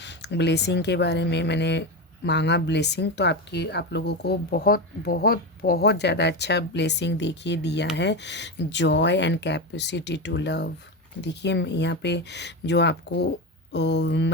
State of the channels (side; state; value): both; normal; correlation 0.17